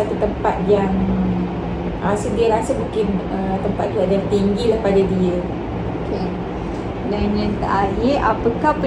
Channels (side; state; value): both; identical; correlation 1.00